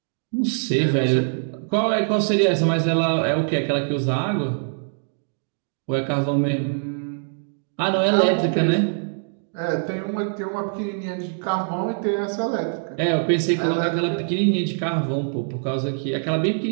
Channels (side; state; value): left; silent; digital silence